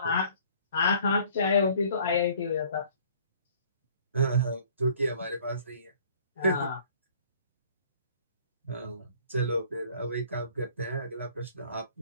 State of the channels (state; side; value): inverted; both; correlation -0.55